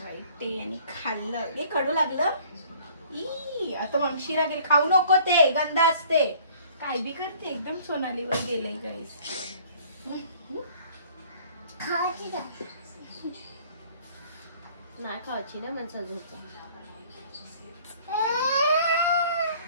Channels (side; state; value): both; inverted; correlation -0.54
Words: ते आणि खाल्लं हे कडू लागलं. ई आता मागशी लागेल. खाऊ नको ते गंध असते. काय बी करते एकदम सोनालीवर गेलंय गाईस. नाही खायची ना माझा झोपा.